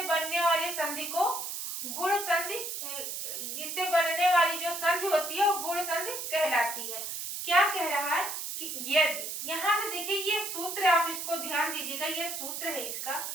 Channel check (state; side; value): noise; right; hiss, 5 dB below the sound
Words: बनने वाली संधि को गुण संधि, जिससे बनने वाली जो संधि होती है वो गुण संधि कहलाती है। क्या कह रहा है कि यदि, यहां से देखिए ये सूत्र, आप इसको ध्यान दीजिएगा, ये सूत्र है इसका,